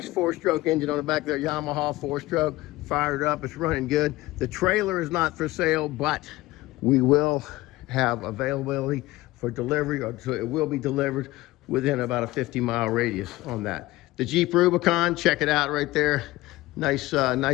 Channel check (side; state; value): right; quieter; 18.7 dB